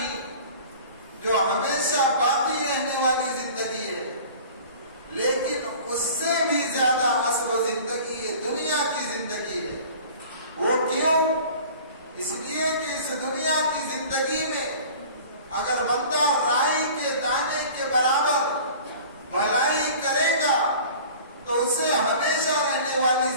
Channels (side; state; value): both; inverted; correlation -0.43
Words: جو ہمیشہ باقی رہنے والی زندگی ہے. لیکن اس سے بھی زیادہ اصل زندگی ہے، دنیا کی زندگی ہے. وہ کیوں؟ اس لیے کہ اس دنیا کی زندگی میں اگر بندہ رائی کے دانے کے برابر بھلائی کرے گا تو اسے ہمیشہ رہنے والی